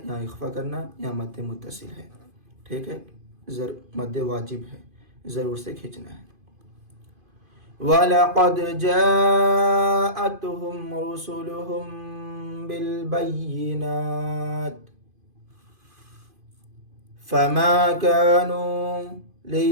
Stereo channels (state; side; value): late; left; 2.5 ms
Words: इख्फा करना, यहाँ मद्दे मुत्तसिल है, ठीक है। मद्दे वाजिब है, ज़रूर से खींचना है। वलक़द जाअतहुम रुसुलुहुम बिलबय्यिनात फमा कानू